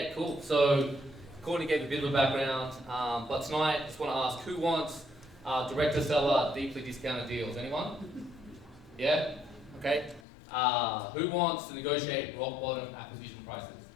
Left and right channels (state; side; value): drops out; right; at 10.2 s